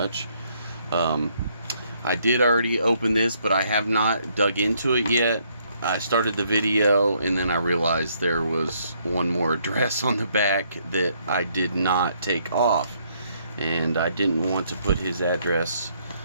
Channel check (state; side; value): inverted; both; correlation -0.69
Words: I did already open this, but I have not dug into it yet. I started the video and then I realized there was one more address on the back that I did not take off, and I didn't want to put his address